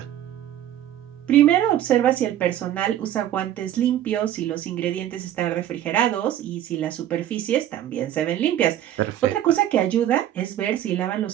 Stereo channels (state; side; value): quieter; left; 11.8 dB